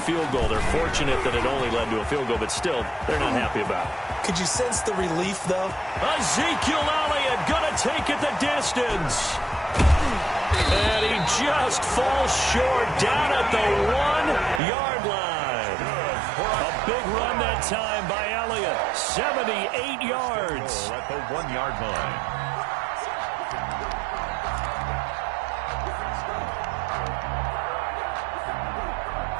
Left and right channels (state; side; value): drops out; left; at 14.6 s